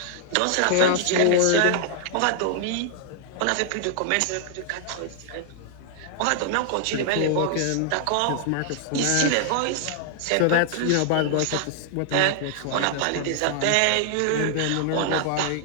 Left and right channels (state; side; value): different; both; correlation 0.00